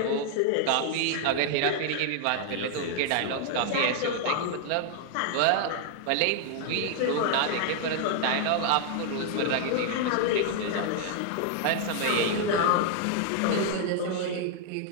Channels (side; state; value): both; different; correlation 0.00